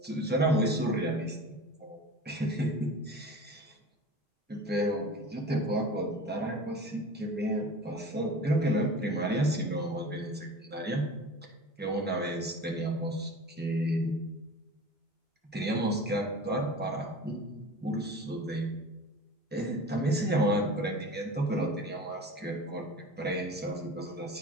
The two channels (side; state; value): both; normal; correlation 0.37